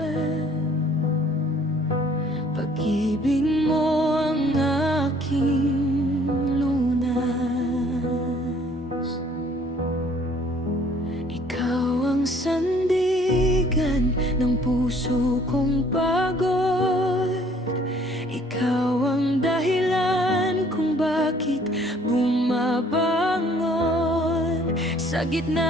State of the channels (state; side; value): normal; both; correlation 0.58